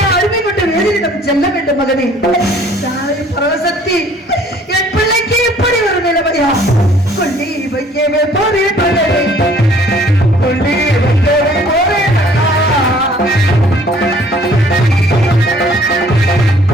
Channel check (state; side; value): normal; both; correlation 0.56